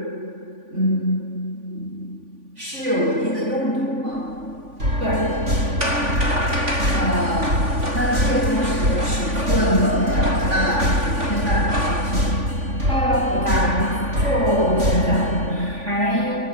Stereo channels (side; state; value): left; late; 3.5 ms